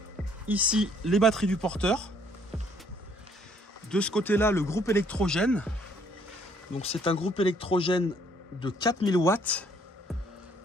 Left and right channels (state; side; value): normal; both; correlation 0.64